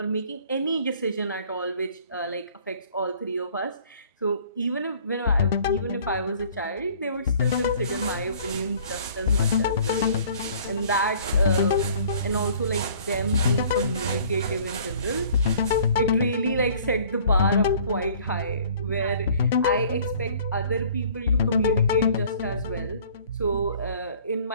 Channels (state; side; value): inverted; both; correlation -0.53